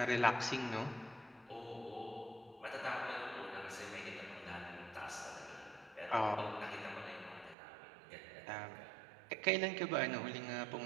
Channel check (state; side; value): drops out; left; at 7.6 s